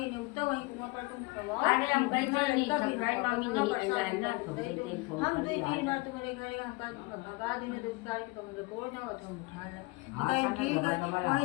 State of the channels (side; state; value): right; quieter; 24.9 dB